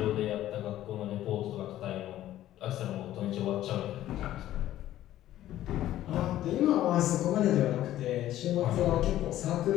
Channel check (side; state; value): right; quieter; 13.4 dB